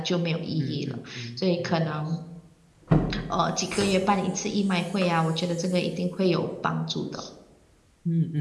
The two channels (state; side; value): identical; both; correlation 1.00